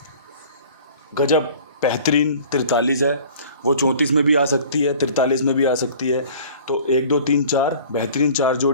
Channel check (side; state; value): both; inverted; correlation -0.47